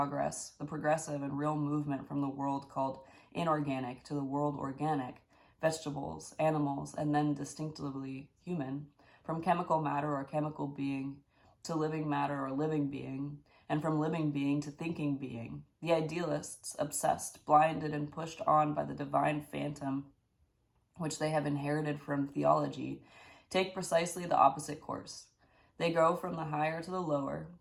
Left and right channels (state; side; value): identical; both; correlation 1.00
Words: and real movement from the world called inorganic to the world organic, vegetables, animals, and then distinctively human, from chemical matter or chemical being to living matter or living being, and from living being to thinking being, the idealists, obsessed, blinded, and pushed on by the divine phantom which they have inherited from theology, take precisely the opposite course. They go from the higher to the lower,